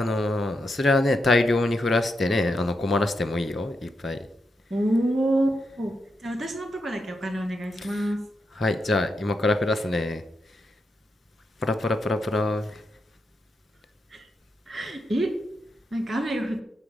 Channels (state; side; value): normal; both; correlation 0.84